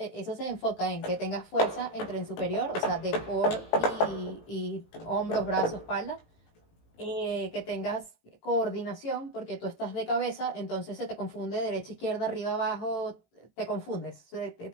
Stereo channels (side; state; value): right; late; 18 ms